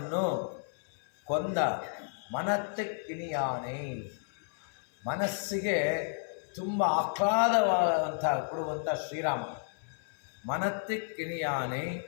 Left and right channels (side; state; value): right; silent; 56 dB below the other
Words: ಕೊಂದ ಮನತ್ತಿಕ್ಕಿನಿಯಾನೆ. ಮನಸ್ಸಿಗೆ ತುಂಬ ಆಹ್ಲಾದವಾದಂಥ ಕೊಡುವಂಥ ಶ್ರೀರಾಮ. ಮನತ್ತಿಕ್ಕಿನಿಯಾನೆ